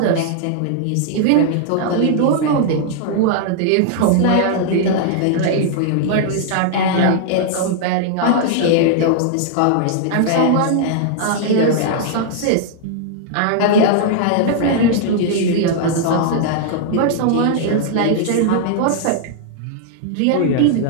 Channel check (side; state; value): both; different; correlation -0.01